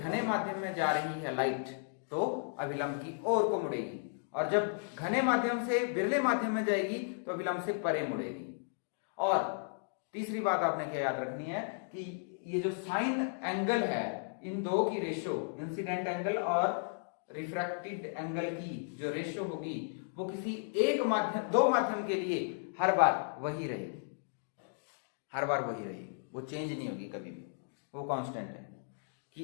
माध्यम में जा रही है लाइट तो अभिलंब की ओर को मुड़ेगी, और जब घने माध्यम से विरले माध्यम में जाएगी तो अभिलंब से परे मुड़ेगी। और तीसरी बात आपने क्या याद रखनी है कि ये जो साइन एंगल है, इन दो की रेशो, इंसिडेंट एंगल और रिफ्रैक्टेड एंगल की जो रेशो होगी वो किसी एक माध्यम, दो माध्यम के लिए हर बार वही रहेगी, हर बार वही रहेगी, वो चेंज नहीं होगी कभी भी, वो कांस्टेंट है।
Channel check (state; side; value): silent; right; digital silence